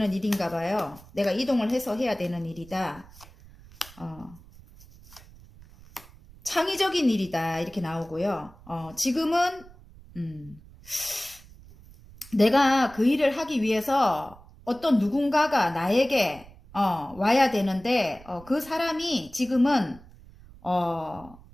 일인가 봐요. 내가 이동을 해서 해야 되는 일이다. 창의적인 일이다. 이렇게 나오고요. 지금은 내가 그 일을 하기 위해서 어떤 누군가가 나에게 와야 되는데 그 사람이 지금은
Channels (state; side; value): noise; right; rumble, 22 dB below the sound